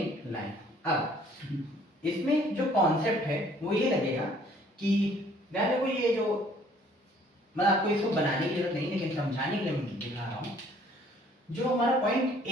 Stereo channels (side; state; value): both; normal; correlation 0.58